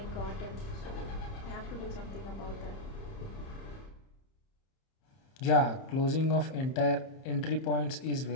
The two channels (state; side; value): late; right; 30 ms